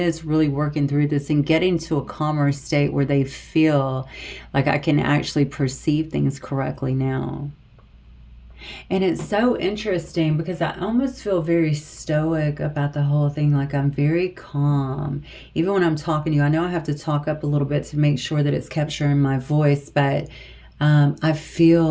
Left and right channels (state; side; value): identical; both; correlation 1.00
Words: really working through this and getting to a calmer state where they feel like I can actually perceive things correctly now. And it's so interesting because I almost feel very stoic about the whole thing. Like I'm very calm. Even when I'm talking to you, I know I have to talk up a little bit to make sure that it's capturing my voice, but I